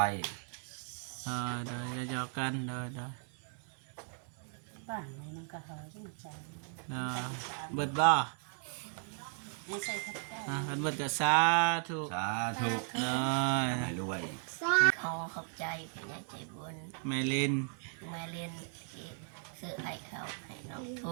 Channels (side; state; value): left; silent; 54 dB below the other